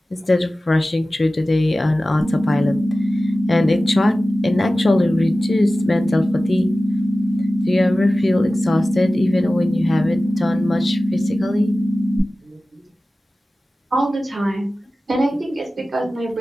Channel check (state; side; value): normal; both; correlation 0.96